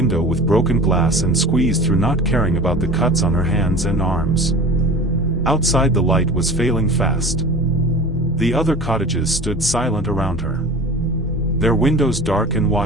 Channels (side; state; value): both; normal; correlation 0.37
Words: with broken glass and squeezed through, not caring about the cuts on her hands and arms. Outside the light was failing fast. The other cottages stood silent around her. Their windows dark and